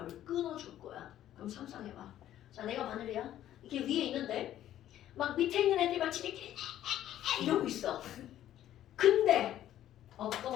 끊어줄 거야. 그럼 상상해봐. 자 내가 바늘이야. 이게 위에 있는데 막 밑에 있는 애들이 막 지들끼리 이러고 있어. 근데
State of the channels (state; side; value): quieter; right; 12.2 dB